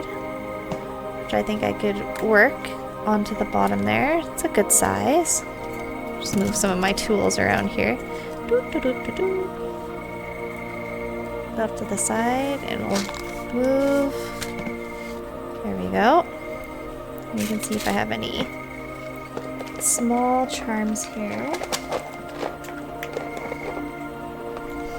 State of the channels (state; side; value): identical; both; correlation 1.00